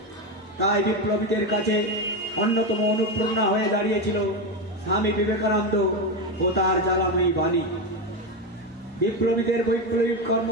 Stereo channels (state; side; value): normal; both; correlation 0.13